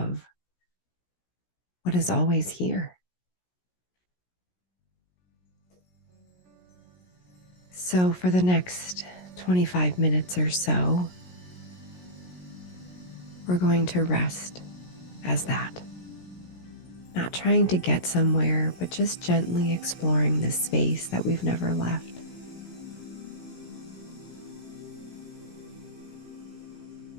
what is always here. So, for the next 25 minutes or so, we're going to rest as that. Not trying to get somewhere, but just gently exploring this space that we've never left.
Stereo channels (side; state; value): right; late; 17 ms